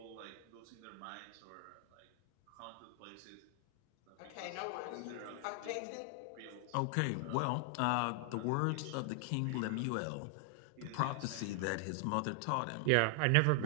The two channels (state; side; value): different; both; correlation 0.00